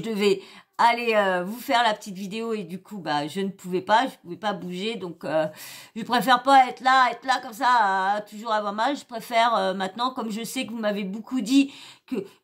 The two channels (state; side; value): identical; both; correlation 1.00